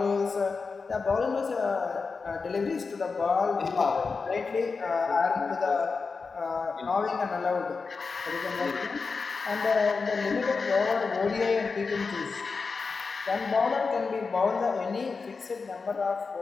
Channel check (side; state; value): right; quieter; 4.7 dB